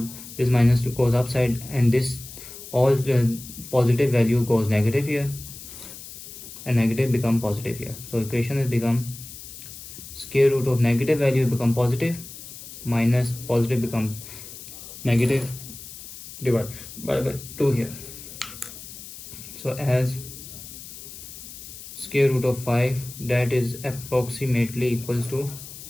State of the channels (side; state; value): left; noise; hiss, 14 dB below the sound